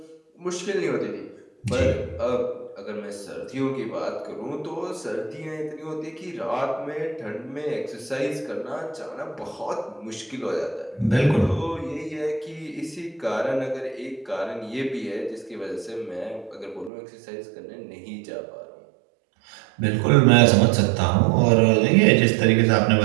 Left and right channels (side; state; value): left; drops out; at 16.9 s